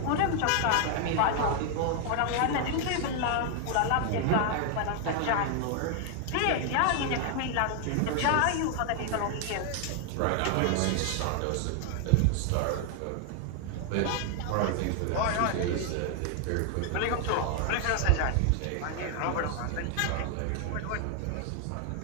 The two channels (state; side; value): different; both; correlation 0.00